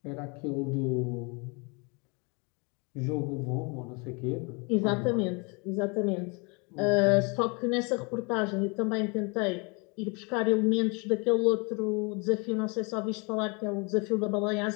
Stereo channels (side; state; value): right; quieter; 31.3 dB